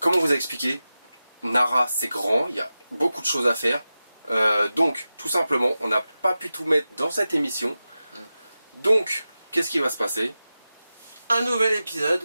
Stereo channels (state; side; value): inverted; both; correlation -0.94